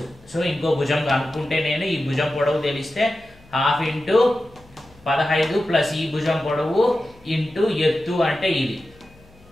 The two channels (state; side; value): noise; left; hum, 27 dB below the sound